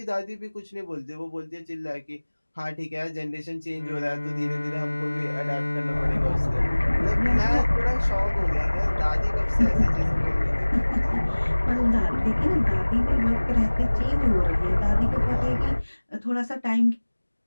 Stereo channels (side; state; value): both; inverted; correlation -1.00